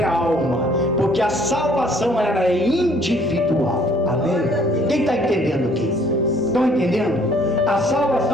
alma, porque a salvação ela é individual. Amém? Quem está entendendo aqui? Estão entendendo? A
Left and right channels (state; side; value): normal; both; correlation 0.60